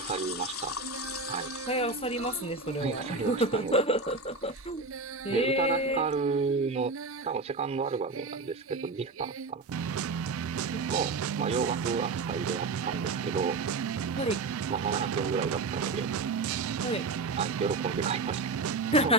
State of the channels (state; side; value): quieter; left; 3.7 dB